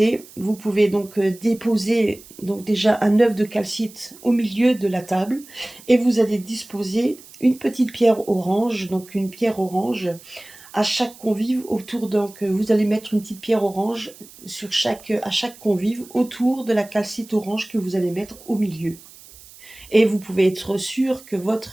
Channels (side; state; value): right; noise; hiss, 21 dB below the sound